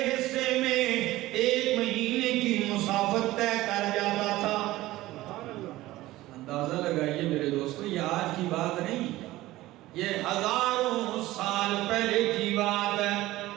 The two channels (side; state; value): left; quieter; 17.1 dB